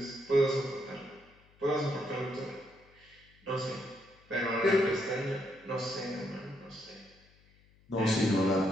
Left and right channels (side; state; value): left; noise; hum, 29 dB below the sound